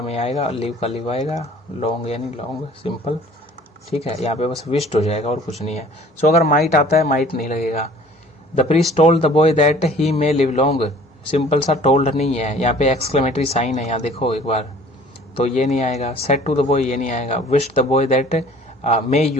मे आएगा, लिव का लिव आएगा, लॉन्ग यानी लॉन्ग, सिंपल, ठीक है। यहाँ पे बस विश्ड हो जाएगा और कुछ नहीं है। सो अगर माइट आता है, माइट नहीं लगेगा। The priest told the boy that he may live long, simple सा टोल्ड नहीं है, यहाँ पे एक्सक्लेमेटरी साइन है, यहाँ देखो एक बार, तो ये नहीं आएगा। सेड टू द बॉय, ये नहीं आएगा। Wish the boy that may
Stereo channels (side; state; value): both; normal; correlation 0.51